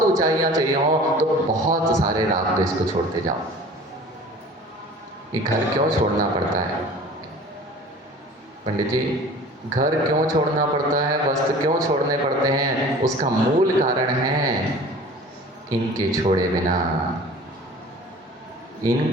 ऊंचाइयां चाहिए हो तो बहुत सारे राग द्वेष को छोड़ते जाओ। ये घर क्यों छोड़ना पड़ता है पंडित जी? घर क्यों छोड़ना पड़ता है, वस्त्र क्यों छोड़ने पड़ते हैं? उसका मूल कारण है इनके छोड़े बिना,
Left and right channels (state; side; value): normal; both; correlation 0.44